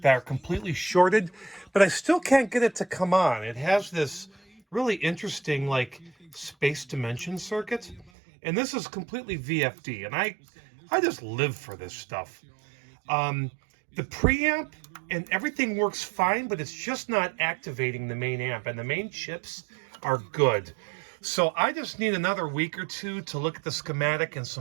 are completely shorted, but I still can't get it to come on. It has this really interesting, like, space dimension circuit, and this is completely VFD, and I just live for this stuff. The preamp and everything works fine, but it's just not activating the main amp, and the main chips are good. So I just need another week or two to look at the schematic and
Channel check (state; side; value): drops out; left; at 8.1 s